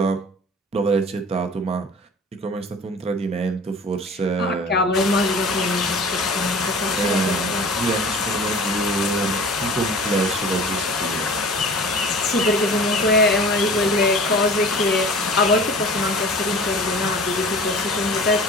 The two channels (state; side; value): normal; both; correlation 0.42